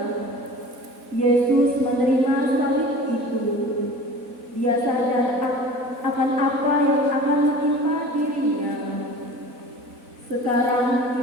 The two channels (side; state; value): left; late; 4.1 ms